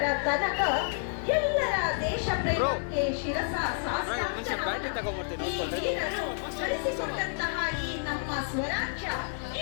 ತನಕ ಎಲ್ಲರ ದೇಶ ಪ್ರೇಮಕ್ಕೆ ಶಿರಸ ಬಳಸಿಕೊಂಡಂತಹ ಈ ನಮ್ಮ ಸ್ವರಾಜ್ಯ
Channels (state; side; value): silent; right; digital silence